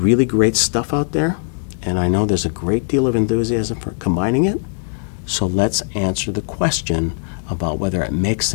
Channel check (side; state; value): right; silent; digital silence